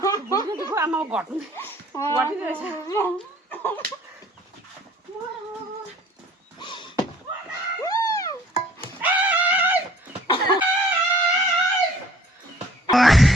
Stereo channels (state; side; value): normal; both; correlation 0.54